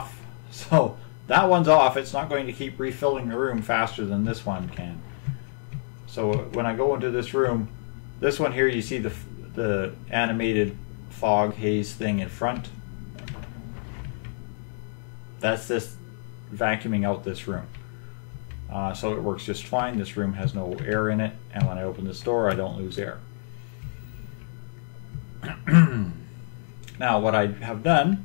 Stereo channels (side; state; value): right; silent; digital silence